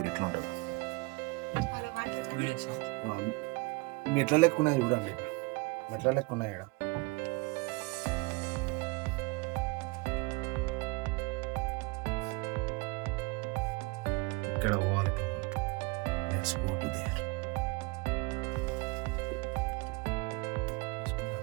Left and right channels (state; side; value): quieter; left; 26.1 dB